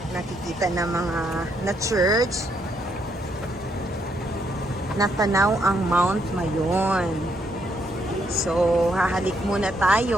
nakikita na mga na church. Natanaw ang Mount Mayon. So, hahalik muna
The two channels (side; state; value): both; normal; correlation 0.75